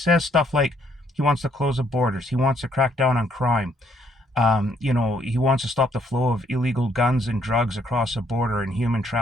stuff like he wants to close the borders, he wants to crack down on crime. He wants to stop the flow of illegal guns and drugs across the border and human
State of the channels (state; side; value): normal; both; correlation 0.68